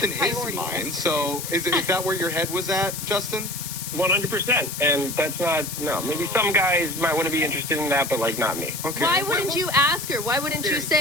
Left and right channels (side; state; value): left; noise; hiss, 7 dB below the sound